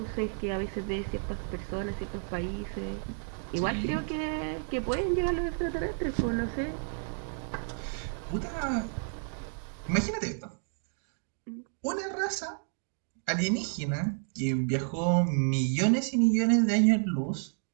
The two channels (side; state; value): left; silent; 57 dB below the other